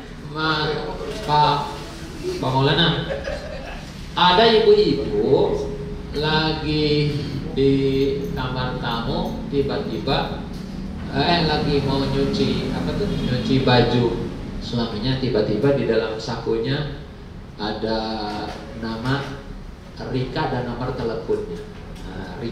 Pak Maulana, ada ibu-ibu lagi di kamar tamu, tiba-tiba lagi mau nyuci nyuci baju suaminya, tiba-tiba di dalam sakunya ada nama Rika dan nomor teleponnya. Nah,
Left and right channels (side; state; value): both; identical; correlation 1.00